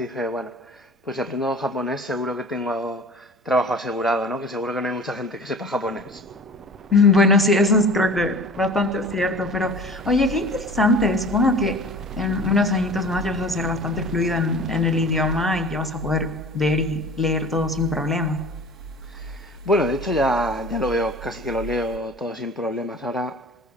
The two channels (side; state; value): both; normal; correlation 0.42